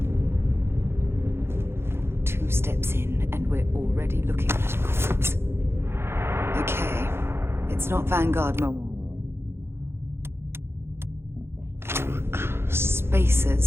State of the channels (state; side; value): late; left; 0.12 ms